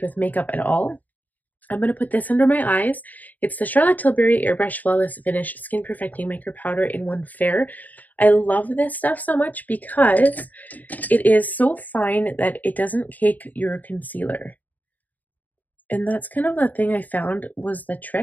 with makeup at all. I'm going to put this under my eyes. It's the Charlotte Tilbury Airbrush Flawless Finish Skin Perfecting Micro Powder in 1 Fair. I love this stuff so much because it is so fine that it doesn't cake your concealer. And that's kind of the thing I found was the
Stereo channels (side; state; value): right; late; 0.080 ms